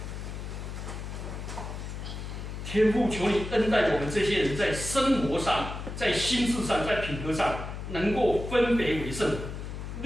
天父，求你恩待我们这些人，在生活上、在心智上、在品格上，能够分别为圣，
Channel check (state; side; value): noise; left; hum, 7 dB below the sound